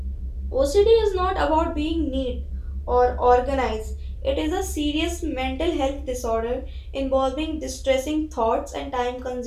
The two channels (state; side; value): identical; both; correlation 1.00